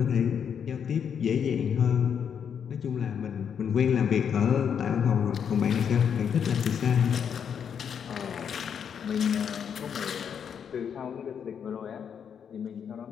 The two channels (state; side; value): quieter; right; 7.7 dB